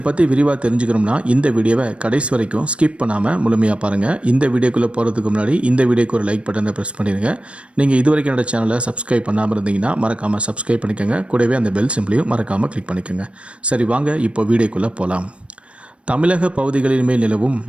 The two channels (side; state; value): left; late; 0.060 ms